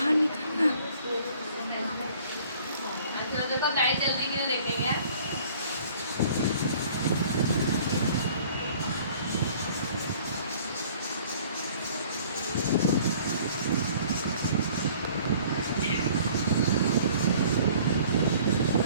निकलना। अच्छा देखो लाइट जल्दी के लिए देखेंगे।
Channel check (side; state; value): both; inverted; correlation -0.54